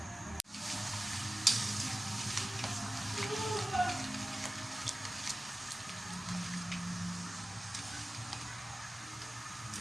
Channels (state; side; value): normal; both; correlation 0.97